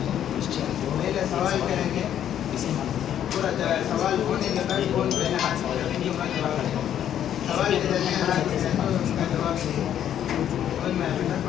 پہلے سوال کریں گے پورا سوال ہونے کے بعد کون پہلے ہاتھ سوال کے درمیان ہاتھ اس کا جواب اور میں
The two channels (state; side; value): quieter; right; 10.3 dB